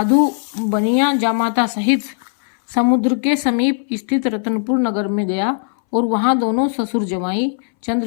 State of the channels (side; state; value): right; silent; 64 dB below the other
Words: बनिया जामाता सहित समुद्र के समीप स्थित रतनपुर नगर में गया और वहां दोनों ससुर जमाई